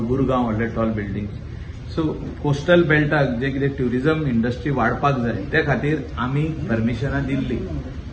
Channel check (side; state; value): both; identical; correlation 1.00